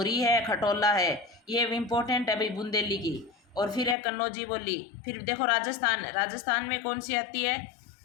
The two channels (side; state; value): right; drops out; at 4.0 s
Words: है, खटोला है। ये इंपॉर्टेंट है भाई, बुंदेली की। और फिर है कन्नौजी बोली। फिर देखो, राजस्थान में कौन सी आती है,